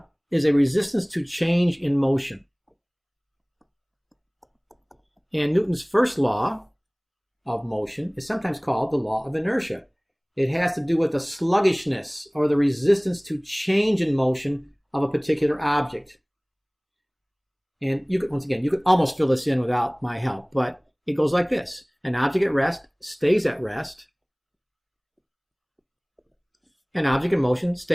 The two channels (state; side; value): identical; both; correlation 1.00